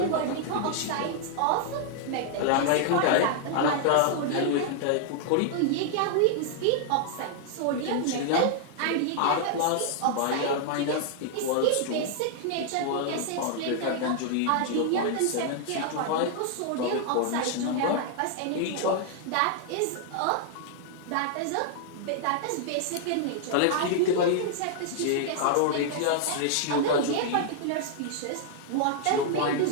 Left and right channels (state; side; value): different; both; correlation -0.01